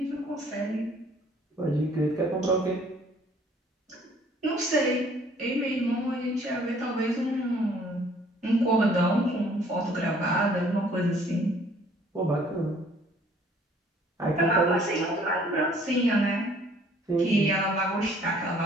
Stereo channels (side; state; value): both; normal; correlation 0.58